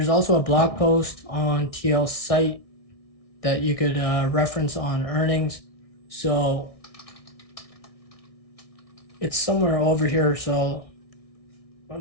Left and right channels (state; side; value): late; right; 1.6 ms